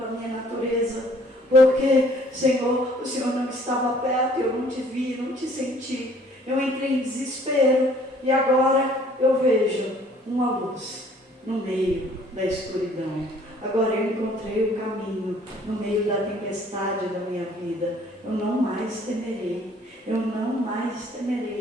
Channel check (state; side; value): normal; both; correlation 0.58